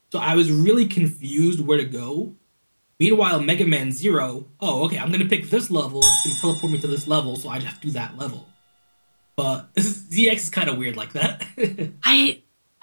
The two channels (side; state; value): both; inverted; correlation -1.00